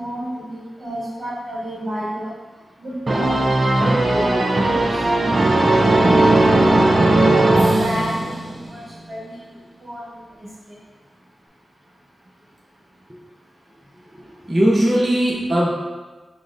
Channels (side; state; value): both; normal; correlation 0.94